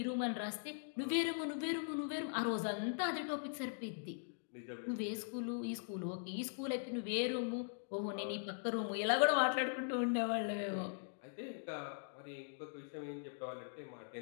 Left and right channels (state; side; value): silent; right; digital silence